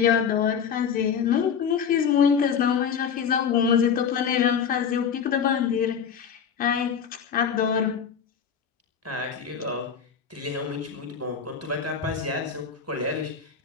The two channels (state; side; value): quieter; right; 7.1 dB